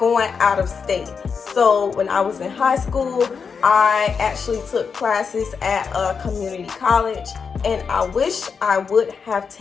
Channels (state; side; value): quieter; right; 5.8 dB